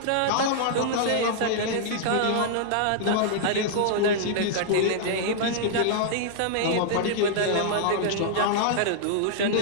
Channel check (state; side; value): different; both; correlation -0.01